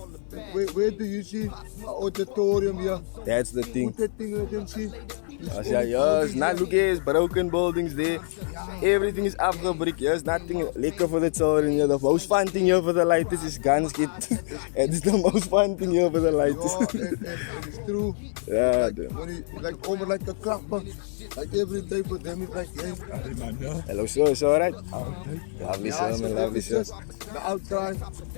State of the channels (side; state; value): right; silent; 61 dB below the other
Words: Where do you see an auditorium here? That's the thing. Put that thing, let them see. Yeah, yes, not look at broken buildings there. Everything is afgebrick. There's nothing lekker for the children here. The most fun thing here for the lighters is guns get. It's the most fun thing here for the lighters. It's true. Yeah. When you like over like a clapper, like every day for them it's like, hey. Hello, sir. It's alright. Lovely, sir, man. Lovely, sir. The outside,